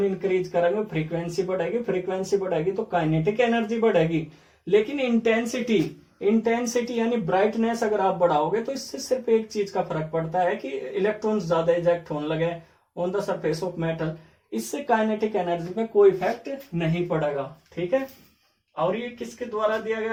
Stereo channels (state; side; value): identical; both; correlation 1.00